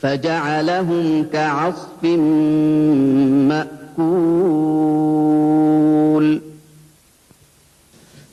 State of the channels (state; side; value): identical; both; correlation 1.00